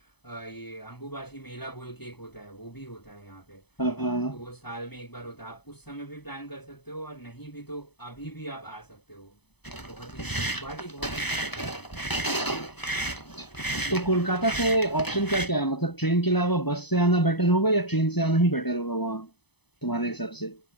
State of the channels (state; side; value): late; right; 0.98 ms